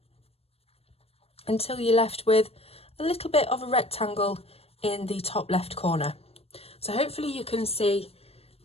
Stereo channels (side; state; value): right; late; 0.29 ms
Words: until you're left with a little bit of a rectangle in the top left corner. So hopefully you can see